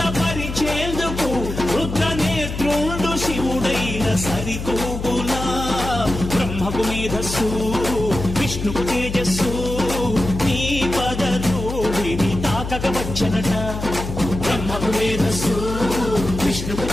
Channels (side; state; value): left; noise; hum, 6 dB below the sound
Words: రుద్రనేత్రుండు శివుడైన సరితూగులా బ్రహ్మకు మేధస్సు విష్ణుకు తేజస్సు నీ పదధూళిని తాకక వచ్చనట బ్రహ్మకు మేధస్సు విష్ణుకు